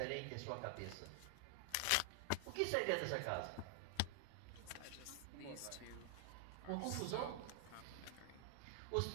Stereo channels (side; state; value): both; different; correlation 0.00